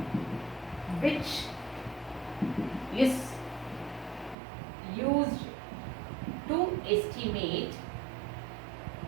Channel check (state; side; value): drops out; left; at 4.4 s